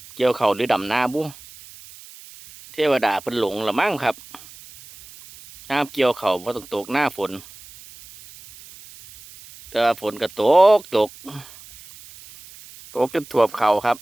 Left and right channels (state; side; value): noise; right; hiss, 20 dB below the sound